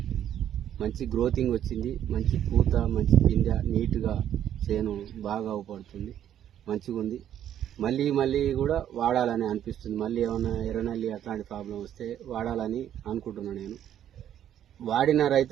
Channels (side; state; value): left; quieter; 10.6 dB